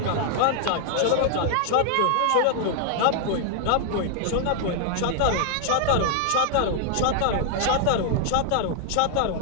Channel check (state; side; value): different; both; correlation 0.00